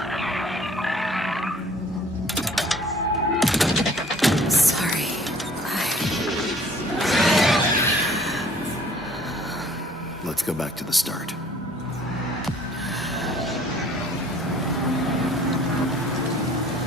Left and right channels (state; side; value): normal; both; correlation 0.55